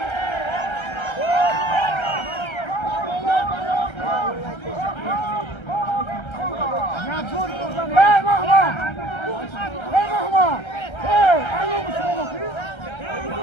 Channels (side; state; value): right; late; 1.3 ms